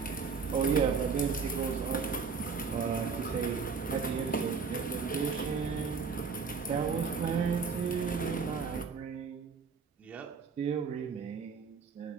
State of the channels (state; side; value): quieter; left; 5.4 dB